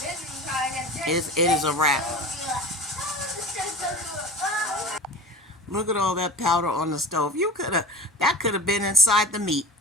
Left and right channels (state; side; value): normal; both; correlation 0.35